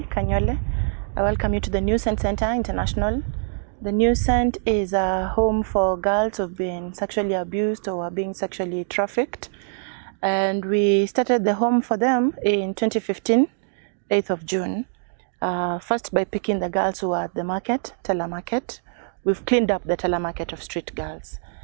Kanyole. I welcome you to the New Scent Center International. The New Scent is a home for girls who've been sexually abused or are being sexually trafficked. And we started the home for them in 2015, 8th of June. First by picking the girls who are at the market, Teller Market. We've cleaned up the Teller Market of street girls.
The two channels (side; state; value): left; silent; digital silence